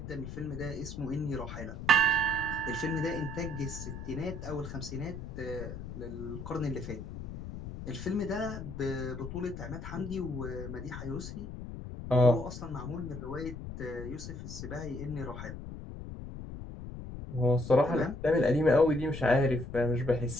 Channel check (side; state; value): left; noise; rumble, 9 dB below the sound